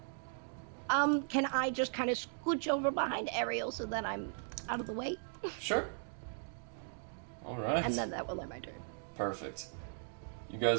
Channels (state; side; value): silent; left; digital silence